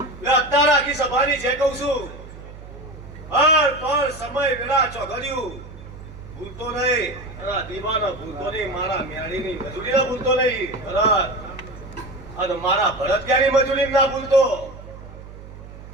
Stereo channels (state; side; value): noise; right; hum, 15 dB below the sound